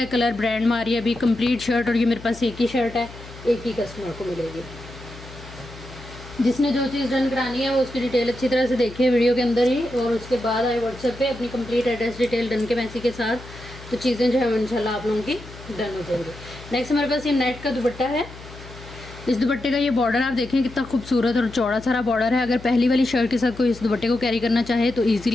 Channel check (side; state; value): left; noise; hum, 16 dB below the sound